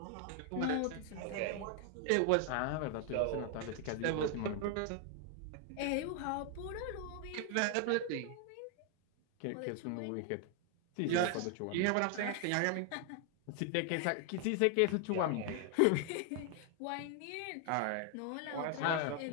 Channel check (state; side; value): different; both; correlation 0.01